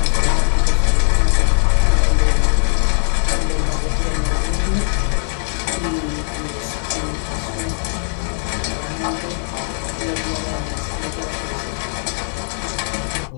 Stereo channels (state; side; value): silent; right; 66 dB below the other